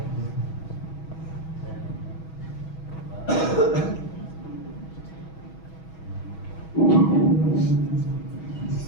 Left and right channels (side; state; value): right; late; 6.2 ms